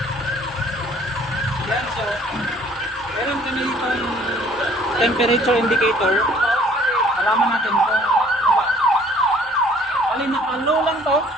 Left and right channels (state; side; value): normal; both; correlation 0.56